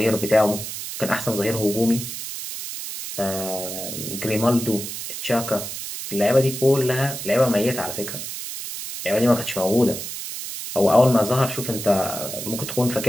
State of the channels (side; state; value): right; noise; hiss, 7 dB below the sound